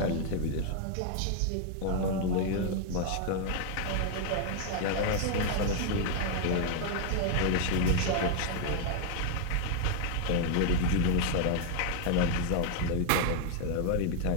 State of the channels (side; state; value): both; different; correlation 0.00